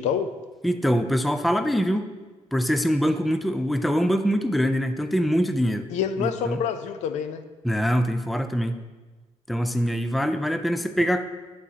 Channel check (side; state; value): both; normal; correlation 0.87